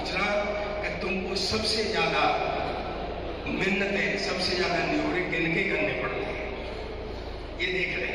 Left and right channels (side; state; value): both; identical; correlation 1.00